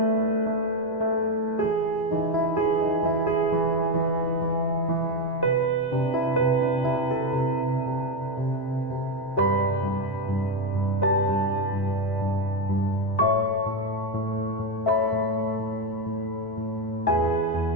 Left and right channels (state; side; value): late; right; 1.1 ms